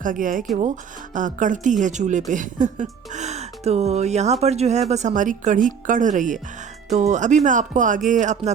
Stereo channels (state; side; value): quieter; left; 6.9 dB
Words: गया है कि वो कढ़ती है चूल्हे पे। तो यहाँ पर जो है बस हमारी कढ़ी कढ़ रही है। तो अभी मैं आपको आगे अपना